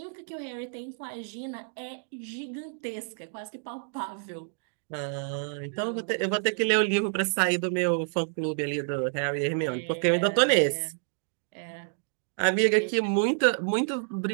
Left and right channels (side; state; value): left; silent; 59 dB below the other